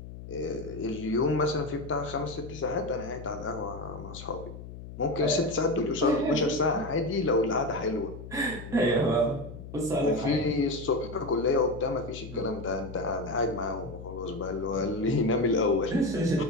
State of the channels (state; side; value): noise; left; hum, 12 dB below the sound